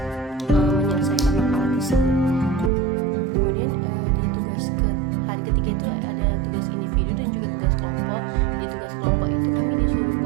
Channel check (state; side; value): drops out; left; at 2.7 s